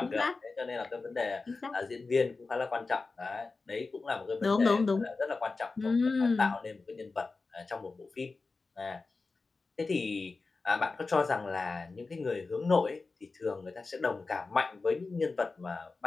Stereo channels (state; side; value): quieter; right; 3.9 dB